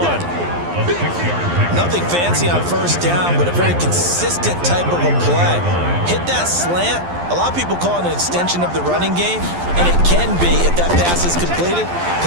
Nothing fancy on 1st down, but a very consistent type of a play. Hit that slant. A lot of people call it an extension of the running game, and it can be if that pass is completed,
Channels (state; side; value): late; left; 12 ms